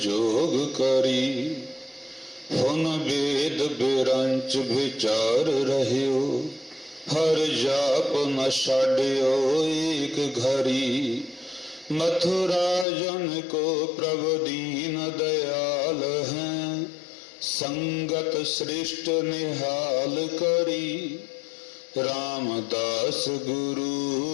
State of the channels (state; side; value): drops out; right; at 12.9 s